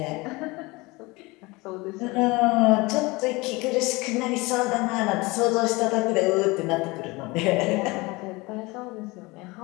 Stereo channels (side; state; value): right; quieter; 23.6 dB